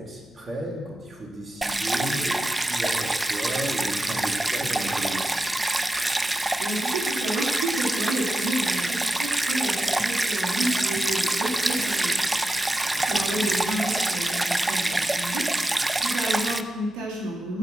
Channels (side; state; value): left; noise; hum, 30 dB below the sound